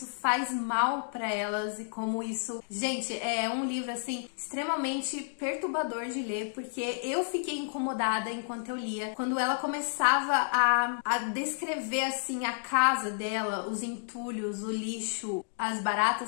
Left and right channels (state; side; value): silent; right; digital silence